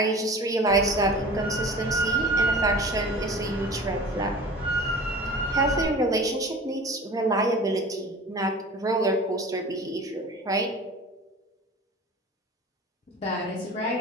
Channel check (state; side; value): normal; both; correlation 0.39